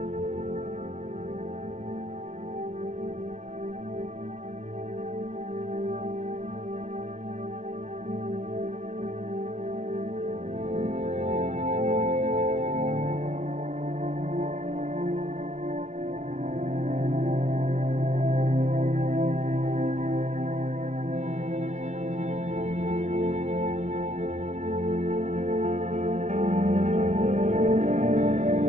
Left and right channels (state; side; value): late; left; 0.34 ms